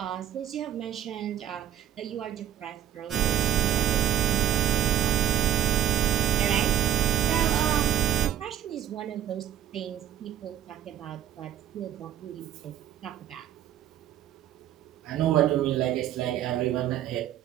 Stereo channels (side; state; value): left; quieter; 10.9 dB